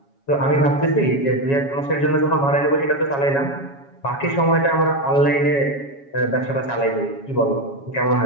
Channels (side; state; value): right; late; 7.2 ms